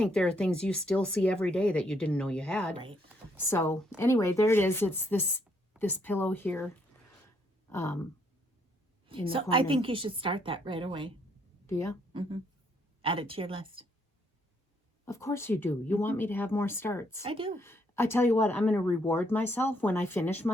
there are things you still see every day that you didn't know you had. Right. So anyway, there it is. It's this pillow here. In the So corner. I think you should start that right away. Do you? Mm-hmm. Add it to your list. Of course you do. You want me to have more starts. I do. I tell you what, I'm going to reward myself when I finish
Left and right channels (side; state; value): both; normal; correlation 0.71